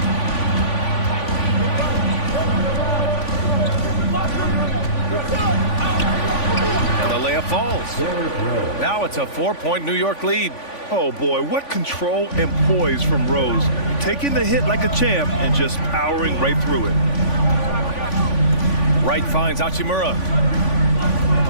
And the layup falls. Now it's a 4-point New York lead. Oh boy, what control and poise from Rose. Taking the hit like a champ and just powering right through it. Wright finds Hachimura.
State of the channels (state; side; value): late; right; 3.5 ms